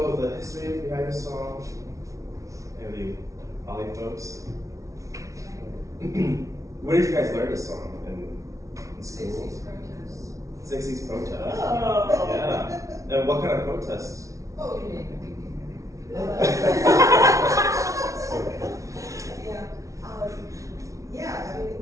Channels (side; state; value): left; late; 0.15 ms